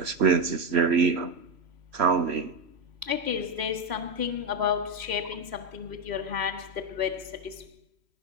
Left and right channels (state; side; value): late; left; 3.1 ms